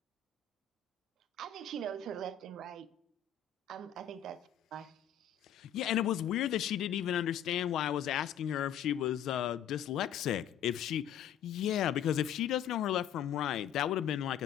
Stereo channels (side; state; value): right; quieter; 9.0 dB